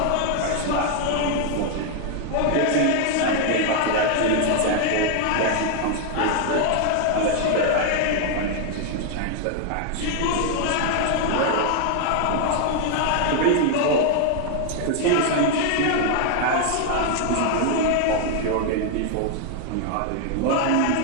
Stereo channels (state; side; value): different; both; correlation 0.00